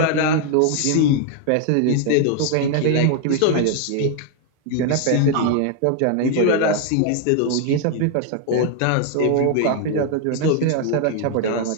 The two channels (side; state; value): both; different; correlation 0.00